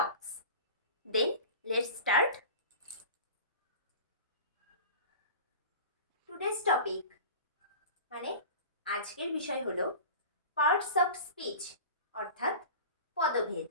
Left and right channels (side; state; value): both; inverted; correlation -0.35